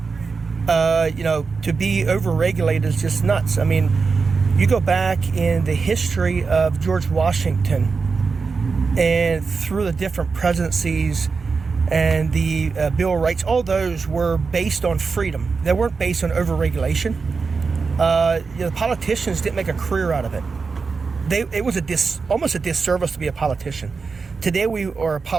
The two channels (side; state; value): left; quieter; 4.8 dB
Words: To be overregulated is just nuts. I mean, you go back in the history of George Washington and through the different presidencies and the Bill of Rights, all those were based on freedom. They weren't based on overregulation. The politicians didn't make a career out of it. It was almost a disservice to be a politician. Today we are a